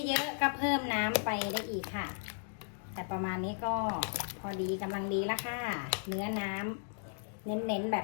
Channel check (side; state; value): right; silent; digital silence